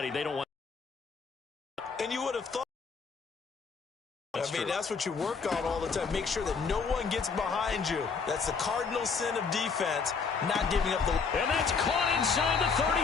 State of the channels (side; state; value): right; quieter; 5.3 dB